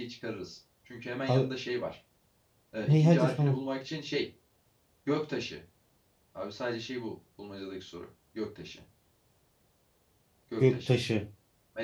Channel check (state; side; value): identical; both; correlation 1.00